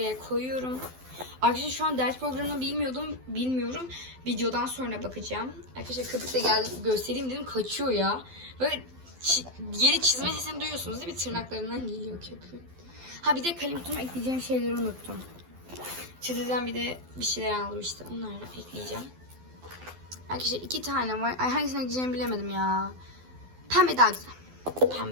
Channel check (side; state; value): left; late; 12 ms